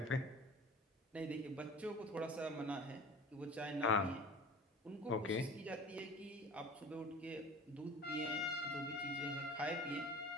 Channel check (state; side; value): normal; both; correlation 0.40